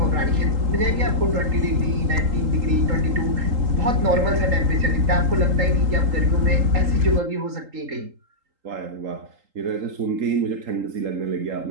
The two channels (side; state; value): left; late; 3.8 ms